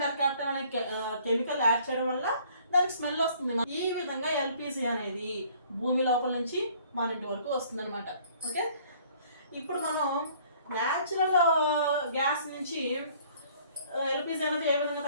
మెర్కాప్టన్ అనే కెమికల్ యాడ్ చేయడం వల్ల దానికి స్మెల్ వస్తుంది. ఈ విధంగా ఎల్పిజి అనేది భూమి లోపల నుంచి మన ఇంటి వరకు వస్తుంది అనమాట. ఓకే, ఇప్పుడు మనం న్యాచురల్ గ్యాస్ నుంచి ఎల్పిజి అనేది ఏ విధంగా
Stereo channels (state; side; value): inverted; both; correlation -0.57